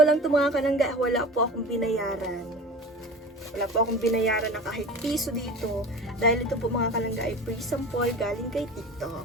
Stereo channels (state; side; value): normal; both; correlation 0.35